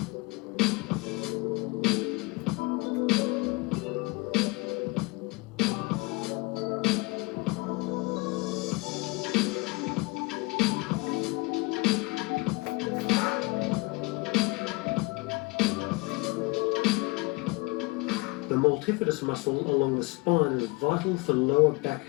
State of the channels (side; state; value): right; quieter; 25.4 dB